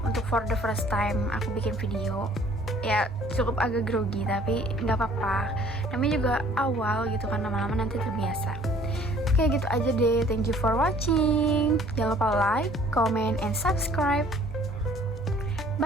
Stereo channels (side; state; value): both; normal; correlation 0.56